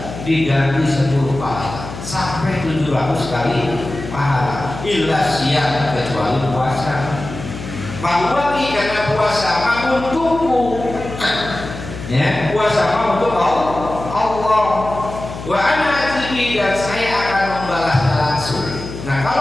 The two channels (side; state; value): left; noise; hum, 11 dB below the sound